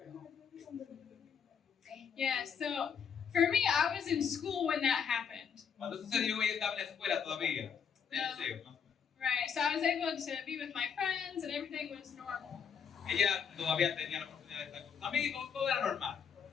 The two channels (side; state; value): right; quieter; 7.1 dB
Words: Yeah, so for me, I was in school when that happened. Cuando sucedió, ella estaba en la escuela todavía. En el liceo, ¿no? Right, so I was able to be with my friends and everything was normal. Ella todavía tenía la oportunidad de estar con sus amigos, todo era normal.